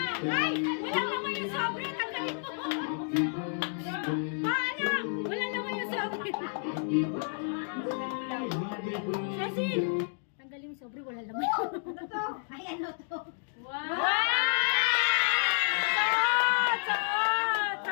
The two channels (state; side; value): silent; right; 57 dB below the other